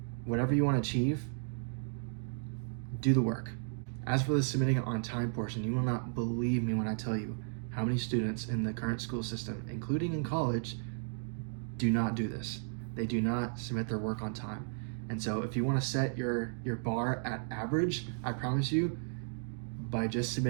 whatever you want to achieve, do the work. As for the submitting it on time portion, you will not believe me when I tell you how many students in the current school system, including in college, do not do this. They do not submit their work on time. And so if you want to set your bar at average, I promise you, by just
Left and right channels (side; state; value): left; silent; digital silence